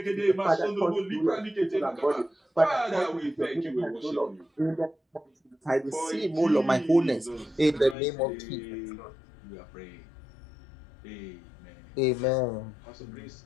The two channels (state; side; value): drops out; right; at 8.0 s